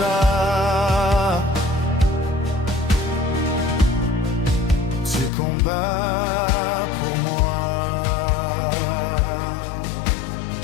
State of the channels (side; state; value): right; drops out; at 5.3 s